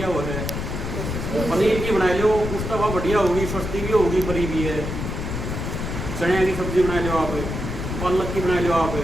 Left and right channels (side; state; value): left; noise; rumble, 4 dB below the sound